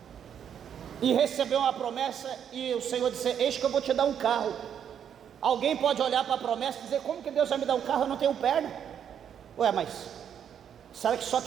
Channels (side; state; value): left; quieter; 8.7 dB